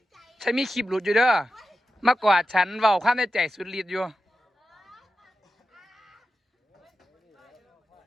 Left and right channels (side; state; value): both; normal; correlation 0.92